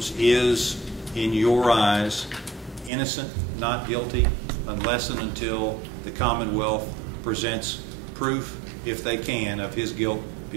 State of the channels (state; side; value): drops out; left; at 2.9 s